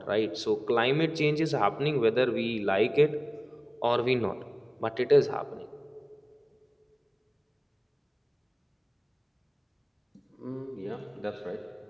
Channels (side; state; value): both; identical; correlation 1.00